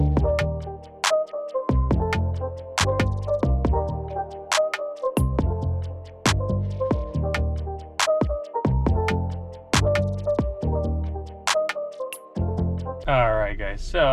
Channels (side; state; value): both; identical; correlation 1.00